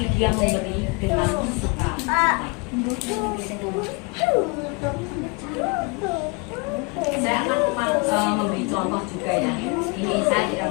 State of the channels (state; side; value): quieter; right; 30.3 dB